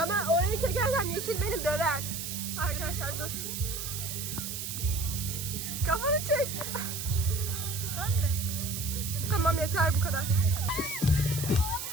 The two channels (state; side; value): noise; right; hiss, 5 dB below the sound